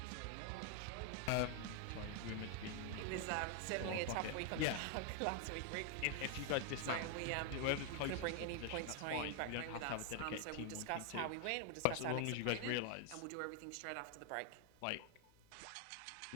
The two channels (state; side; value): different; both; correlation 0.00